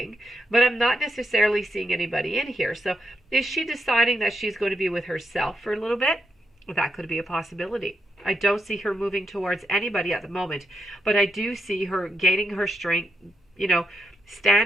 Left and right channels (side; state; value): both; normal; correlation 0.82